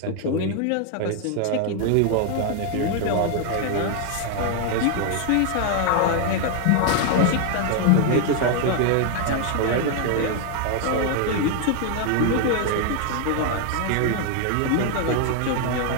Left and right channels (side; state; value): both; different; correlation 0.00